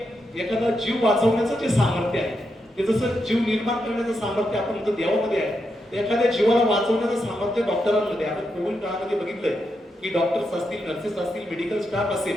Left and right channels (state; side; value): normal; both; correlation 0.84